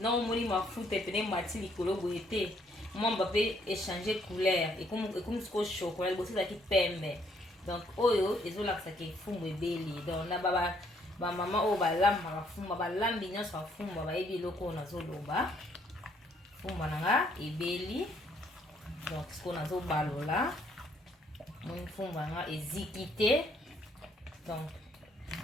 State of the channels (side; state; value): both; normal; correlation 0.68